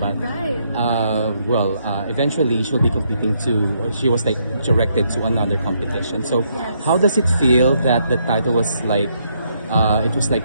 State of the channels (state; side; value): inverted; both; correlation -0.74